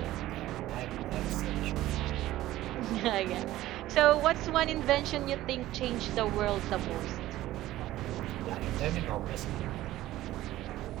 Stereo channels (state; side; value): quieter; left; 15.4 dB